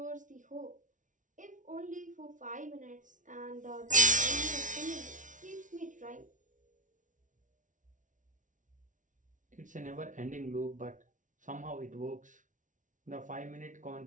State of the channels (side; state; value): left; late; 0.37 ms